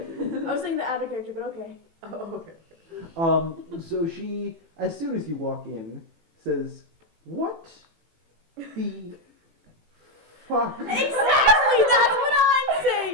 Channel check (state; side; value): late; left; 18 ms